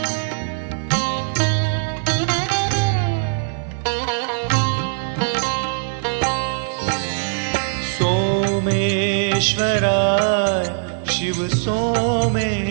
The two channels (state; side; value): silent; left; digital silence